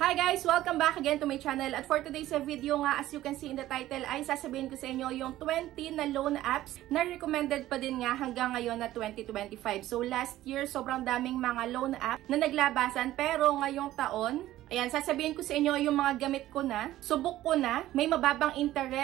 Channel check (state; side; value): quieter; left; 14.7 dB